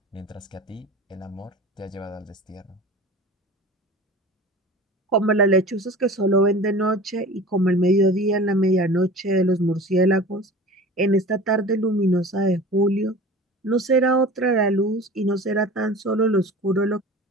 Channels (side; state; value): both; normal; correlation 0.39